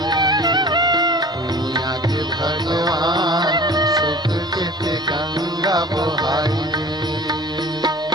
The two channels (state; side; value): normal; both; correlation 0.42